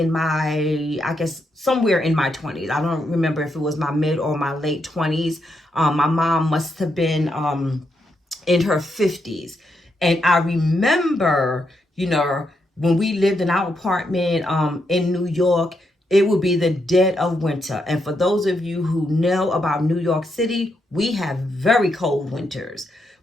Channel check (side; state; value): both; normal; correlation 0.81